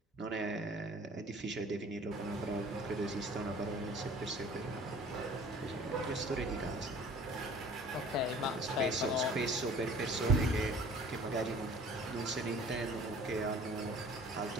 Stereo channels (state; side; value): normal; both; correlation 0.48